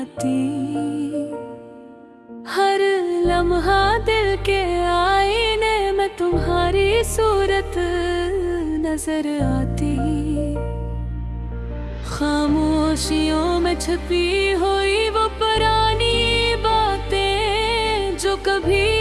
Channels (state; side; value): identical; both; correlation 1.00